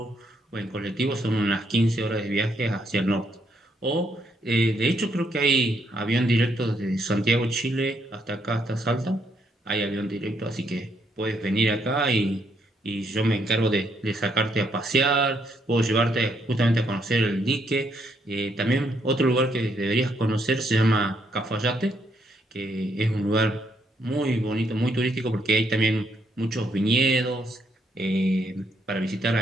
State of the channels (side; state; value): both; normal; correlation 0.74